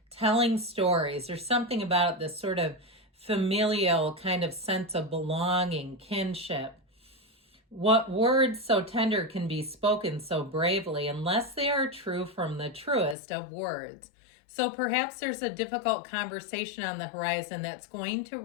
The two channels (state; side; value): drops out; right; at 13.2 s